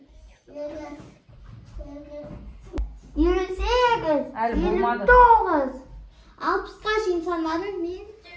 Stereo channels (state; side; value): identical; both; correlation 1.00